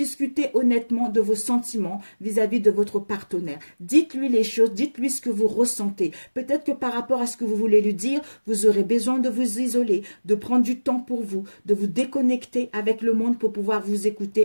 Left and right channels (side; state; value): both; inverted; correlation -1.00